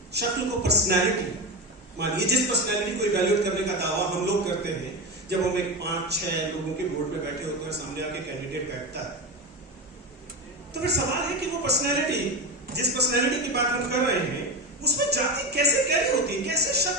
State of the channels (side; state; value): both; normal; correlation 0.20